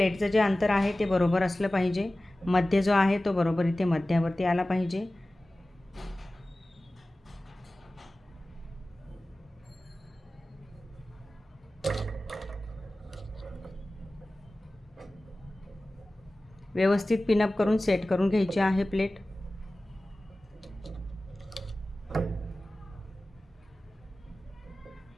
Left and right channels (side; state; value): both; normal; correlation 0.97